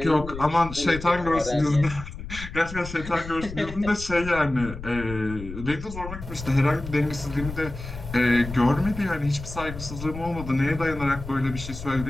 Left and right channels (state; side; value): noise; left; rumble, 11 dB below the sound